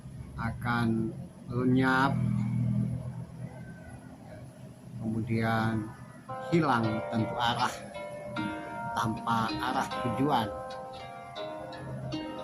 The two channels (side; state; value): both; identical; correlation 1.00